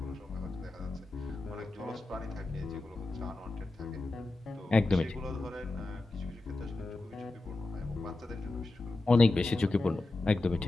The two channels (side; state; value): right; quieter; 3.0 dB